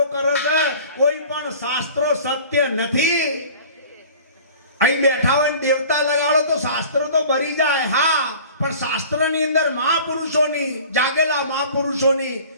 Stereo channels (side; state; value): both; inverted; correlation -0.44